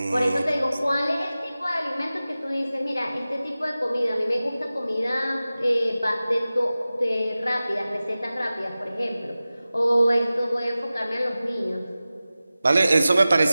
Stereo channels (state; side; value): inverted; both; correlation -0.96